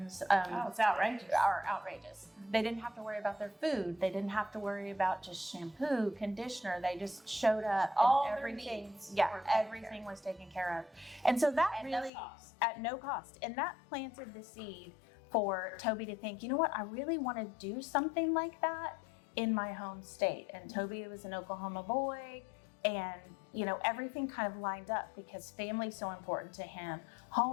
it's outrageous. are outrageous. They didn't have to worry about their food. They didn't have to worry about just shampoo, conditioner. They just showed up All and their everything. needs Yeah, everything was taken care of. And so that At really no cost. at no cost. And that planted the seed for Toby to think, you know what, I really want to do something like that in my home state. And Toby was an Oklahoma boy, and everything kind of lined up because family's so important to him,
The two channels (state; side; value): drops out; right; at 12.1 s